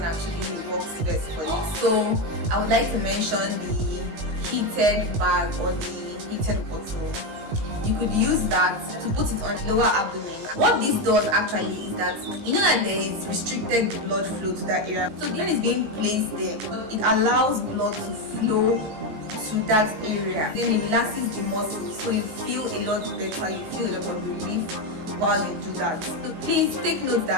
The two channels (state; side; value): late; left; 19 ms